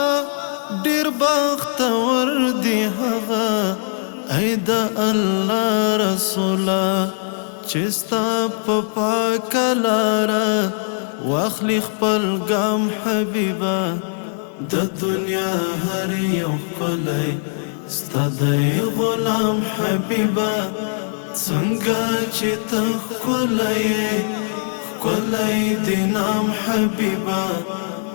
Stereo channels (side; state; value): right; silent; digital silence